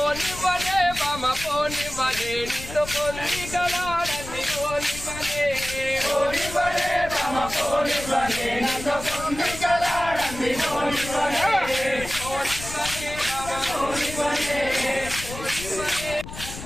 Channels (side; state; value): left; noise; rumble, 11 dB below the sound